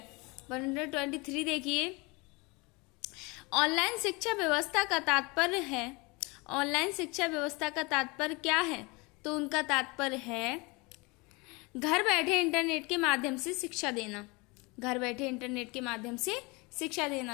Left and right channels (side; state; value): right; quieter; 26.6 dB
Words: 123 देखिए। ऑनलाइन शिक्षा व्यवस्था का तात्पर्य है। ऑनलाइन शिक्षा व्यवस्था का तात्पर्य क्या है? तो उनका तात्पर्य है घर बैठे इंटरनेट के माध्यम से शिक्षा देना। घर बैठे इंटरनेट के माध्यम से शिक्षा